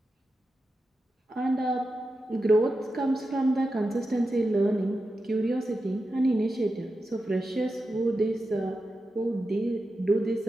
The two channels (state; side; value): normal; both; correlation 0.90